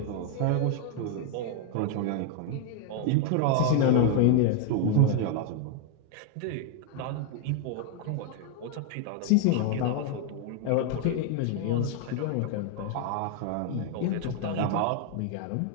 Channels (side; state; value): both; different; correlation 0.00